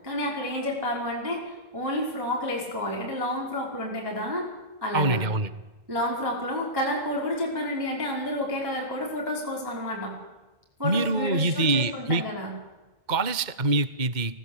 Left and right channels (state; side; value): late; left; 2.1 ms